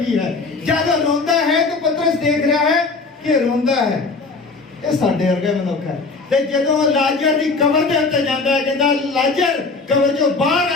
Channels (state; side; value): quieter; right; 4.0 dB